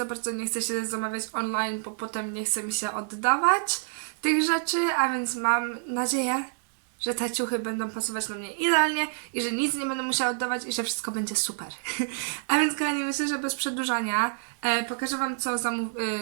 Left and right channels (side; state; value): left; silent; digital silence